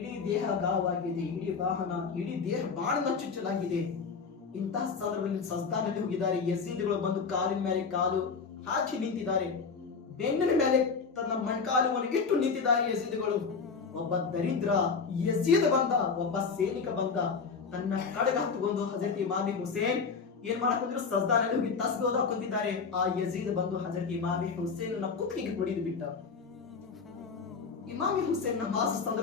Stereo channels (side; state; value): right; quieter; 5.3 dB